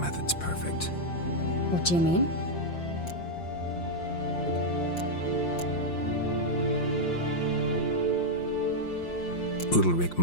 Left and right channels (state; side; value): late; right; 5.7 ms